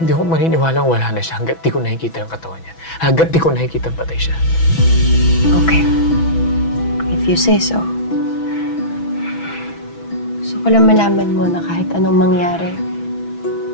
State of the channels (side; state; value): right; late; 6.1 ms